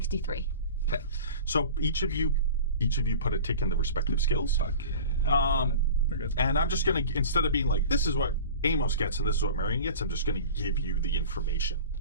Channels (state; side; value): inverted; both; correlation -0.38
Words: Okay, so each of you put a tick in the respective skills. We're good. And I'm just going to, instead of being like, this is what Amos gets and this is what Marion gets, I'm just going to give you the information.